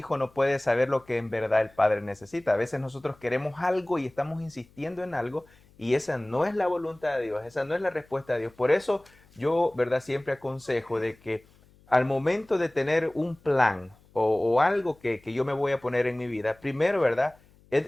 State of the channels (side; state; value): left; noise; hum, 29 dB below the sound